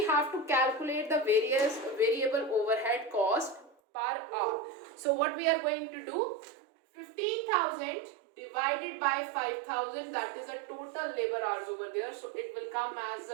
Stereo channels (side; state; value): left; drops out; at 3.8 s